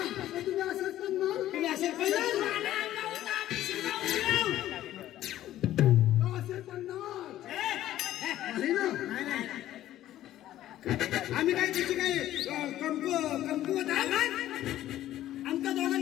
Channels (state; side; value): quieter; right; 13.4 dB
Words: तर तुम्ही असंच करणार. तुम्ही असे करणार? अंगावर आम्ही शिरकावून येऊ. असे करणार नाही ना. आम्ही काय त्याची काय कमकुवत आहे? आमच्या